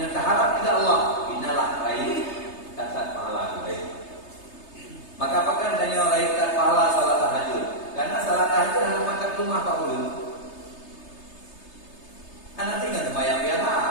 ridha Allah, inalah raih kasat pahala kebaikan. Maka apakah adanya raih kasat pahala salat tahajud? Karena salat tahajud adalah makan rumah Pak Ulu. Anak tinggal sembahyang biasa.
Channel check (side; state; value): right; late; 3.3 ms